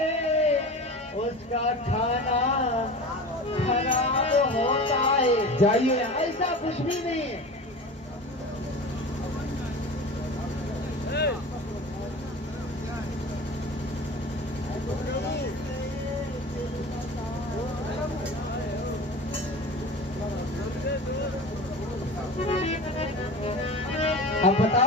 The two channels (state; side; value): normal; both; correlation 0.34